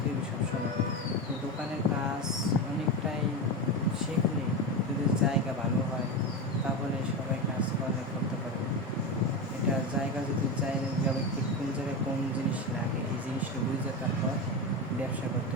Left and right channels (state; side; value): normal; both; correlation 0.18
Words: হবে সবসময়। তো দোকানের কাজ অনেকটাই শিখলে যদি জায়গা ভালো হয় তাহলে সবাই কাজ করতে পারবে। এটা জায়গা যদি যাবে কোন জায়গায় কোন জিনিস লাগে এই জিনিসটা বুঝে তারপর ব্যবসা করতে